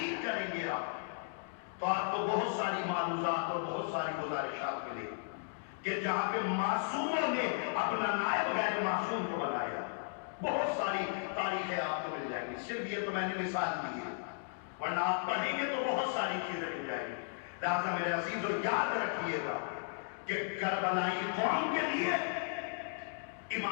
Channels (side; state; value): right; silent; digital silence